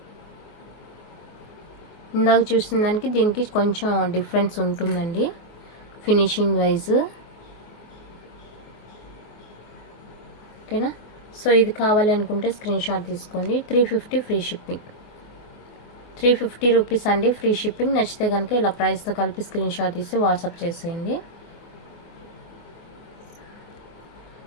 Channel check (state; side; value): late; right; 24 ms